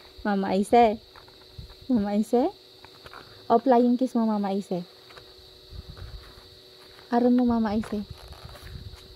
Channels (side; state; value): both; identical; correlation 1.00